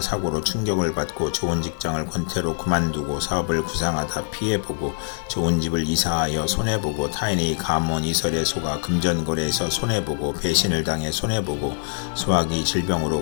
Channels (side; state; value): right; silent; digital silence